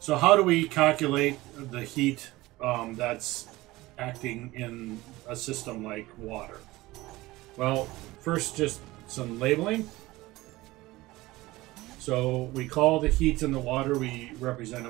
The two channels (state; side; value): quieter; left; 19.1 dB